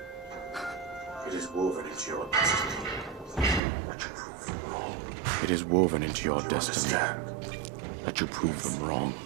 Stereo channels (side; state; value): left; drops out; at 3.6 s